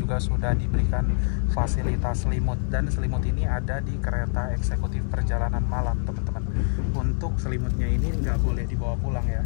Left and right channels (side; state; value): right; silent; 60 dB below the other